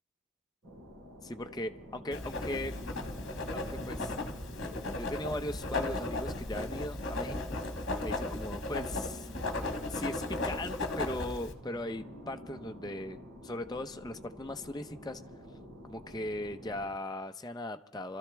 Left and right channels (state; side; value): normal; both; correlation 0.47